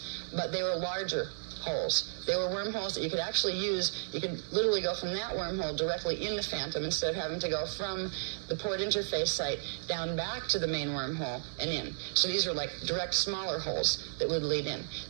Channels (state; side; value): silent; left; digital silence